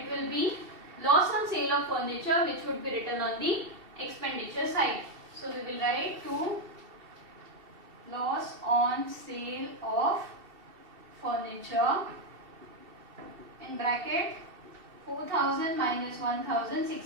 will be loss on sale of furniture, which would be written on the expenditure side. So we will write to loss on sale of furniture in bracket 4,000 minus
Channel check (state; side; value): late; left; 2.7 ms